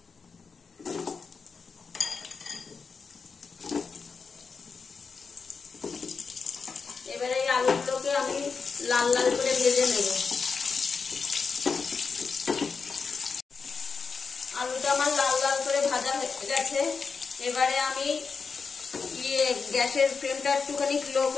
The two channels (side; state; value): right; quieter; 5.2 dB